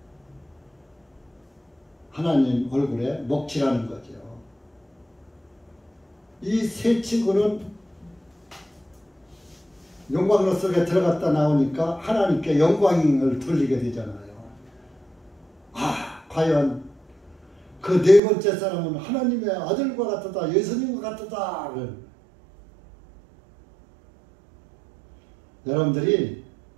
하나님 얼굴에 먹칠하는 거죠. 이 세 친구는 영광로 속에 들어갔다 나오니까 하나님께 영광을 돌리게 되잖아요. 과연 그 네 번째 사람은 하나님의 아들과 같았다. 예수님과 같았다. 여러분들이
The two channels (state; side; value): drops out; left; at 18.2 s